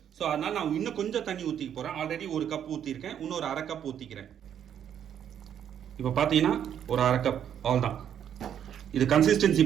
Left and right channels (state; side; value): quieter; left; 9.3 dB